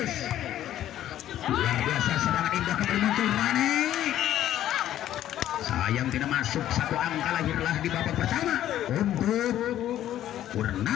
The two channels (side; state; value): right; quieter; 12.2 dB